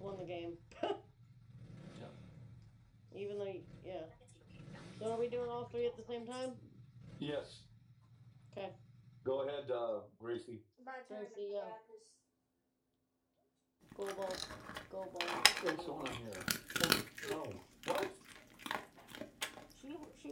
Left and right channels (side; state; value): both; identical; correlation 1.00